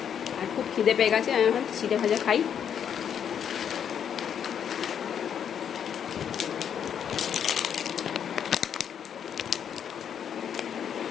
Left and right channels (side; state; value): right; quieter; 8.4 dB